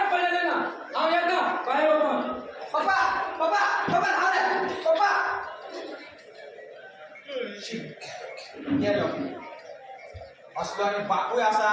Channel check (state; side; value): identical; both; correlation 1.00